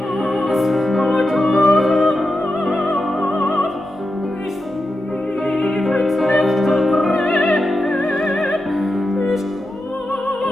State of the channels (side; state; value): both; normal; correlation 0.89